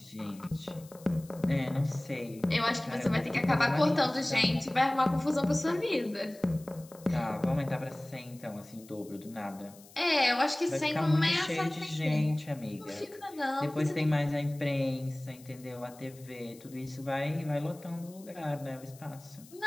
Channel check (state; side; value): noise; left; hiss, 23 dB below the sound